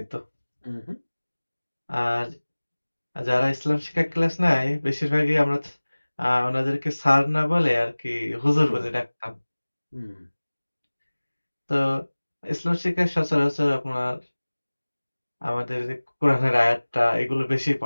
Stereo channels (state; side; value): inverted; both; correlation -1.00